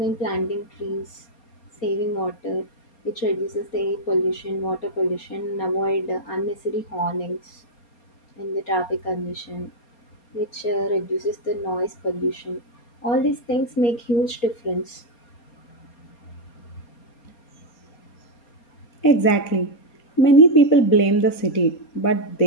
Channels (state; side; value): late; right; 4.3 ms